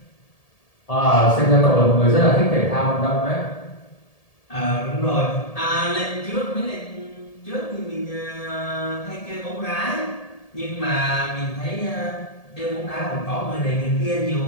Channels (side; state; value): right; late; 1.7 ms